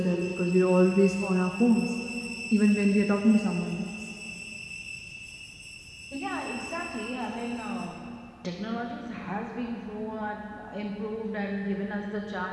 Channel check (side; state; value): both; identical; correlation 1.00